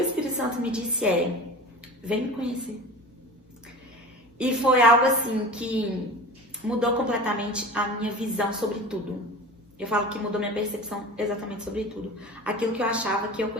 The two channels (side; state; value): both; normal; correlation 0.35